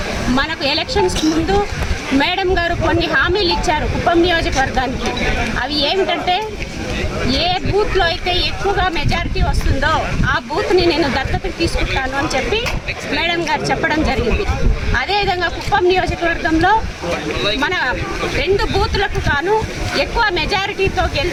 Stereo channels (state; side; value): identical; both; correlation 1.00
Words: మనకు ఎలక్షన్స్ ముందు మేడం గారు కొన్ని హామీలు ఇచ్చారు కుప్పం నియోజకవర్గానికి. అవి ఏమిటంటే, ఏ బూత్లో అయితే ఎక్కువగా మెజారిటీ వస్తుందో ఆ బూత్ని నేను దత్తతకు తీసుకుంటాను అని చెప్పి మేడం గారు చెప్పడం జరిగింది. అదేవిధంగా కుప్పం నియోజకవర్గంలో మన 2 బూతులకు గాను ఎక్కువ మెజారిటీతో